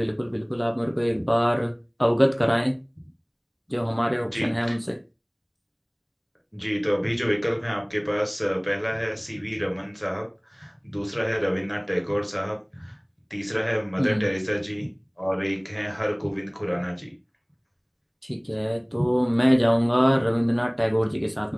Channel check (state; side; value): identical; both; correlation 1.00